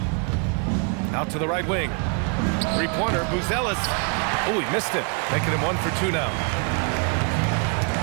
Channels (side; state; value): left; quieter; 37.6 dB